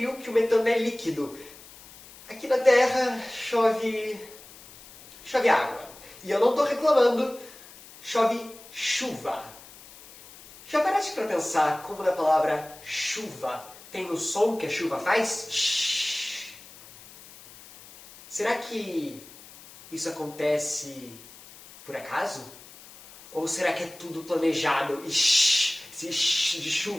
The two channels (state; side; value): noise; left; hiss, 20 dB below the sound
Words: que o metano é líquido. Aqui na Terra chove água. E eu não estou reclamando, chove chuva. Já paraste para pensar como na palavra chuva tem o som que a chuva faz? Shhh. Será que isso acontece por acaso? Ou será que é tudo planejado e shhh, se shhh de